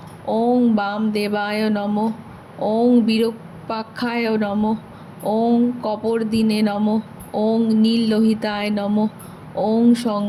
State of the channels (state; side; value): identical; both; correlation 1.00